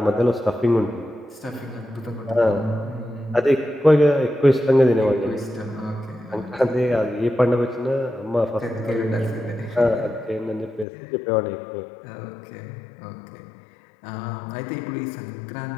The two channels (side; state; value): right; drops out; at 10.9 s